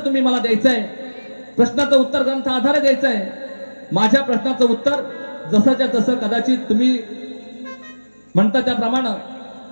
तुम्ही मला द्यायचं आहे. प्रश्नाचं उत्तर ग्रंथ आधारे द्यायचं आहे. माझ्या प्रश्नाचं उत्तर जसंच्या तसं, कदाचित तुम्ही म्हणता त्याप्रमाणे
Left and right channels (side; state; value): both; inverted; correlation -1.00